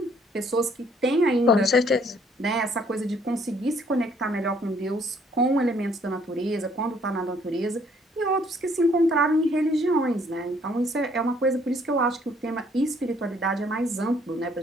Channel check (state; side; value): normal; both; correlation 0.63